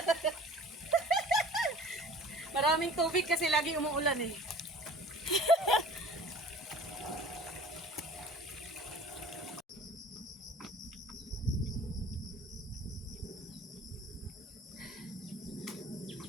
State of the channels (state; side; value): normal; both; correlation 0.46